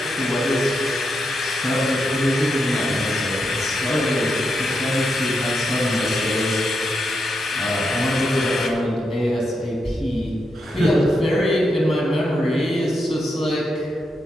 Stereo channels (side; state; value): both; normal; correlation 0.83